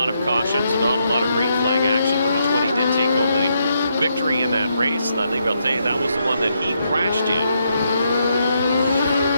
of cautions and not a lot of green flag action, but the 20 did take home the victory in that race. That was the one that he crashed in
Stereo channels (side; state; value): both; inverted; correlation -0.78